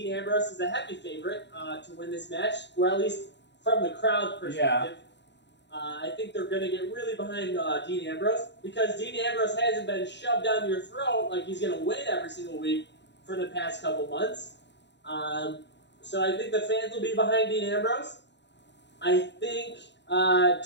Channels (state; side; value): late; right; 0.51 ms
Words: Ambrose as a heavy favorite to win this match, or at least from the crowd perspective. Yeah. I think they're going to get really behind Dean Ambrose, because Dean Ambrose hasn't been shoved down your throat like he's going to win every single week for the past couple months. So I think the fans will be behind Dean Ambrose. I think